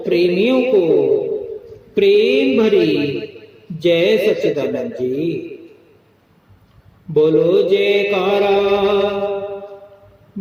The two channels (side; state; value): both; identical; correlation 1.00